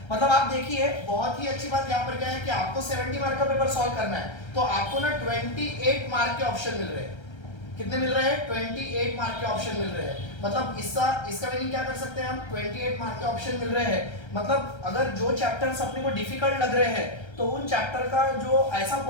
मतलब आप देखिए बहुत ही अच्छी बात यहाँ पर क्या है कि आपको 70 मार्क का पेपर सॉल्व करना है, तो आपको ना 28 मार्क के ऑप्शन मिल रहे हैं। कितने मिल रहे हैं? 28 मार्क के ऑप्शन मिल रहे हैं। मतलब इसका मीनिंग क्या कर सकते हैं हम, 28 मार्क के ऑप्शन मिल रहे हैं। मतलब अगर जो चैप्टर्स अपने को डिफिकल्ट लग रहे हैं तो उन चैप्टर का जो ऐसा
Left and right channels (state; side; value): late; right; 1.3 ms